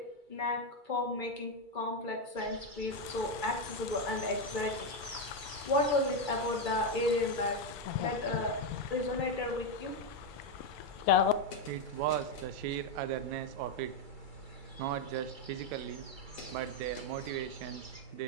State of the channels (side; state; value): left; late; 2.3 ms